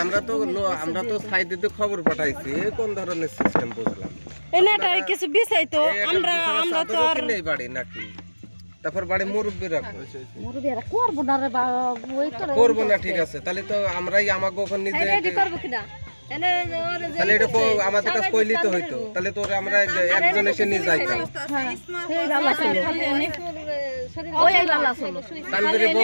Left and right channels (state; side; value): inverted; both; correlation -1.00